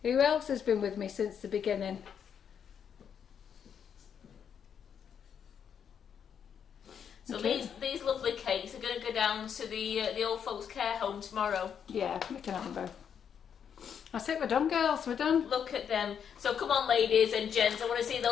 Who else has been with me since the beginning? So Okay. these lovely cakes are going to go down to the old folks' care home tomorrow. Yeah, we can have them both. That's it, we're done, girls, we're done. Look at them. So come on, ladies and gents, I want to see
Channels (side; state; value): right; quieter; 7.8 dB